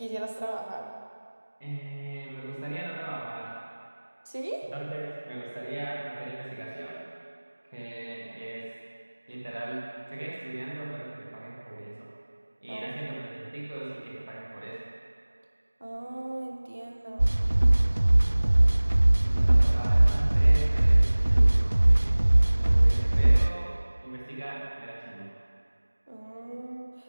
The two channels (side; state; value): both; inverted; correlation -1.00